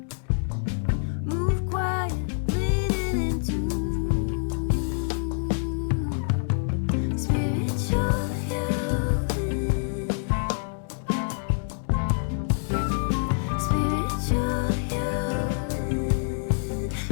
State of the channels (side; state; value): right; silent; digital silence